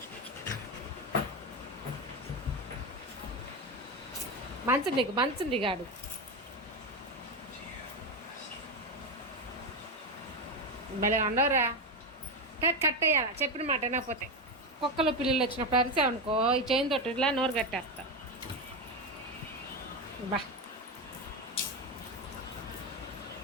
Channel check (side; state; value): both; normal; correlation 0.13